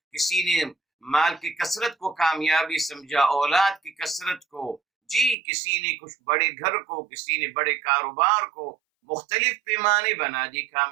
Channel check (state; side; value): drops out; left; at 5.4 s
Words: کسی نے مال کی کثرت کو کامیابی سمجھا، اولاد کی کثرت کو، جی کسی نے کچھ بڑے گھر کو، کسی نے بڑے کاروبار کو، مختلف پیمانے بنا دی